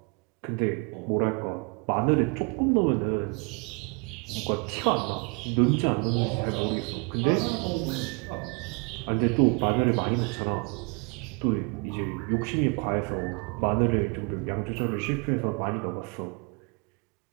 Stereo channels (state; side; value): quieter; left; 32.4 dB